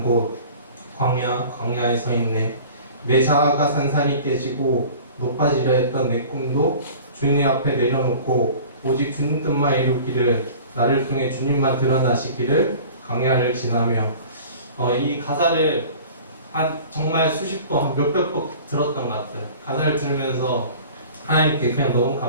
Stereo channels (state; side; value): inverted; both; correlation -0.43